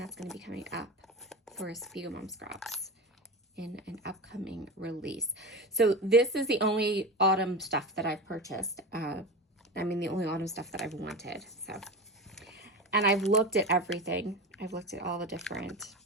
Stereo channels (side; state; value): both; normal; correlation 0.25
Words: going to be coming up for Spiegel Mom Scraps in an upcoming release. So this is the only autumn stuff that I've purchased. The only autumn stuff that I've wanted. So, and I've looked at everything. I've looked at all the different